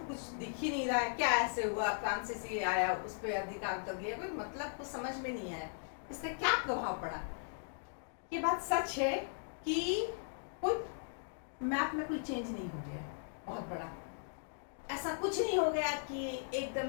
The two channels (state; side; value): silent; right; digital silence